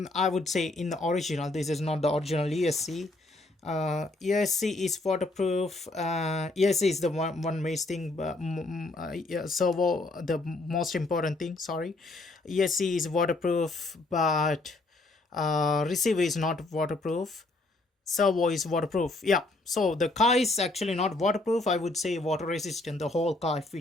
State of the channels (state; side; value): quieter; right; 3.0 dB